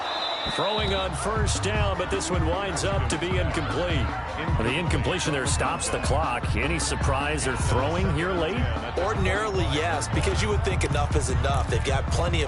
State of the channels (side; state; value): both; identical; correlation 1.00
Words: Throwing on first down, but this one winds up to be incomplete. The incompletion there stops the clock. Any surprise they're throwing here late? Ordinarily, yes, because you would think enough is enough. They've got plenty